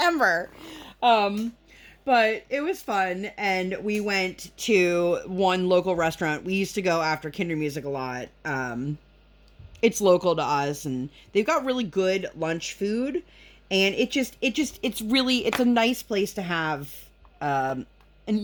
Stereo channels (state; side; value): identical; both; correlation 1.00